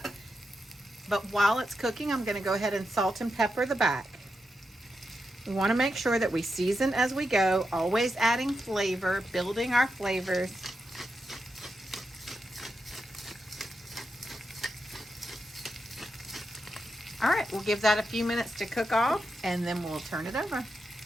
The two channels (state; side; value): normal; both; correlation 0.87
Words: But while it's cooking, I'm going to go ahead and salt and pepper the back. We want to make sure that we season as we go, always adding flavor, building our flavors. All right, we'll give that a few minutes to cook off and then we'll turn it over.